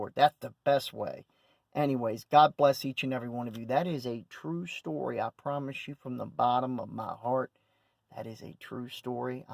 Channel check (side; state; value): both; identical; correlation 1.00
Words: That's the best way. Anyways, God bless each and every one of you. That is a true story. I promise you from the bottom of my heart, that is a true story.